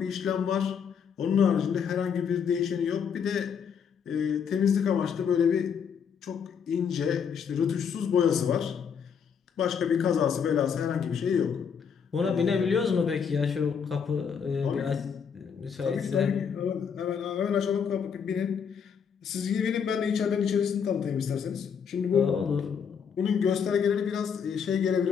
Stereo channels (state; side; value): quieter; right; 7.0 dB